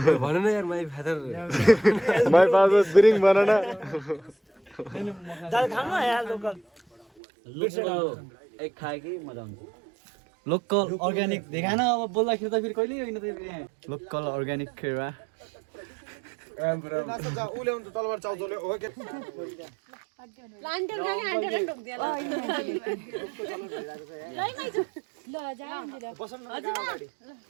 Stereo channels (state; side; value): drops out; left; at 7.1 s